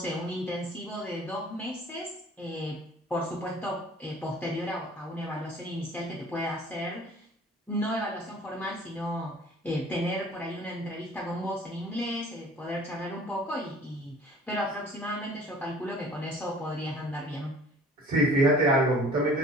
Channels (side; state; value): both; normal; correlation 0.50